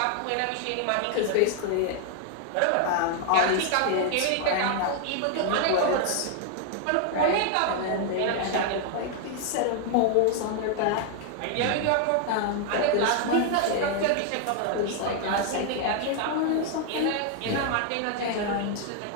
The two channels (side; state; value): both; different; correlation 0.00